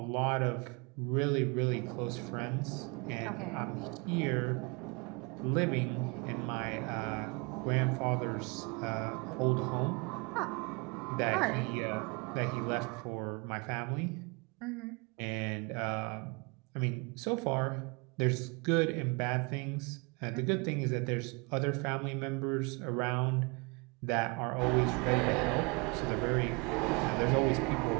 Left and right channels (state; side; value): quieter; left; 29.6 dB